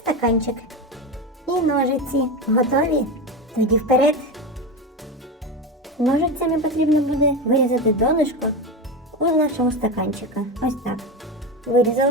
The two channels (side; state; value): both; normal; correlation 0.19